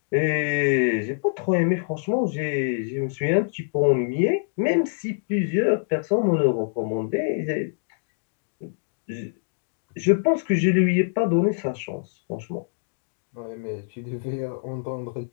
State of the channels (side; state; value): right; silent; digital silence